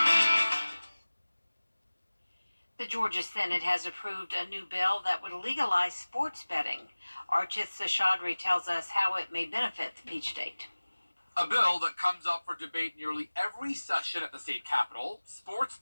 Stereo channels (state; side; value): inverted; both; correlation -1.00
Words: The Georgia Senate has approved a new bill that would legalize sports betting. Archith Seshadri tells us how it may benefit the Peach State. A bill that comes up for debate nearly every session at the state capitol, sports